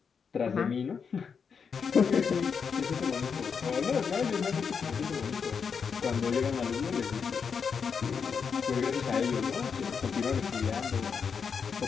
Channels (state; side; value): quieter; right; 6.2 dB